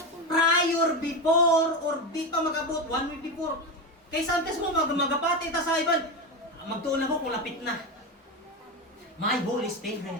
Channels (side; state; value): both; normal; correlation 0.16